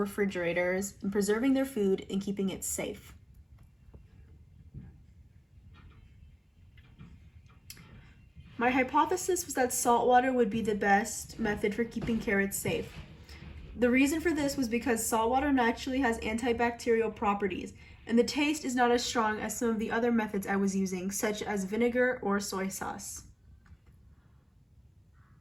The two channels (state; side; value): identical; both; correlation 1.00